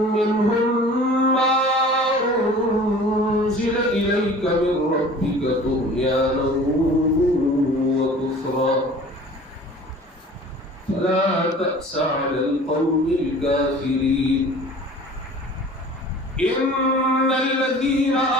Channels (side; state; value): both; normal; correlation 0.45